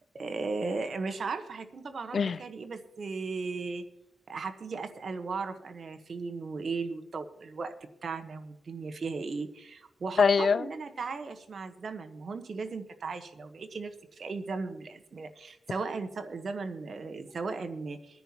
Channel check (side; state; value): both; normal; correlation 0.84